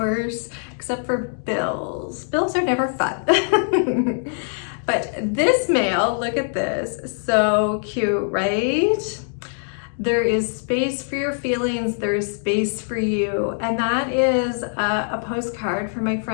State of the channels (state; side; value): silent; right; 64 dB below the other